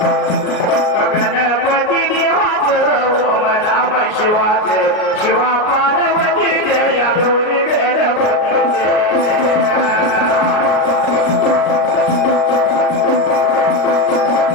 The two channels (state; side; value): late; right; 38 ms